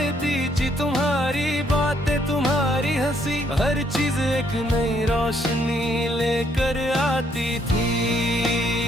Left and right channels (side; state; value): both; normal; correlation 0.70